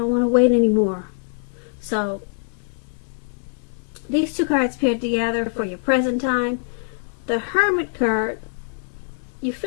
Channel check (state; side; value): silent; right; 63 dB below the other